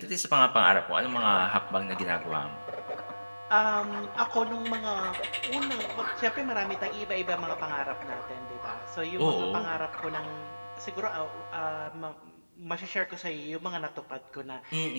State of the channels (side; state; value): both; inverted; correlation -1.00